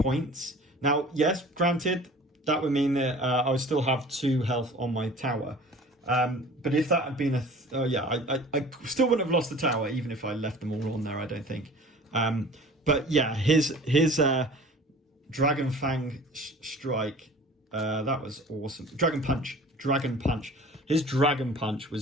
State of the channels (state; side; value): normal; both; correlation 0.44